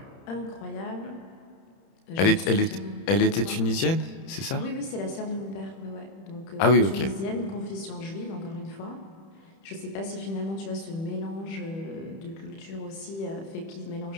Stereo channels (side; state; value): right; late; 31 ms